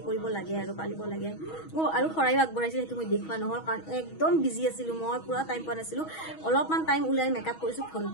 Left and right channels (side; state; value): right; late; 6.3 ms